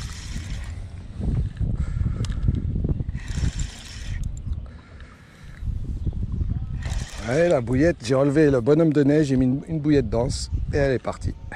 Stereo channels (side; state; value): both; identical; correlation 1.00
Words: Allez, la bouillette, j'ai enlevé le bonhomme de neige, j'ai mis une bouillette dense et elle est partie.